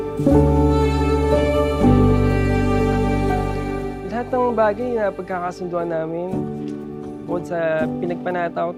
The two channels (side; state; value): both; identical; correlation 1.00